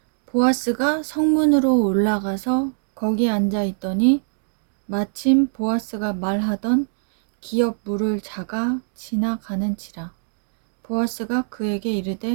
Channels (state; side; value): silent; left; digital silence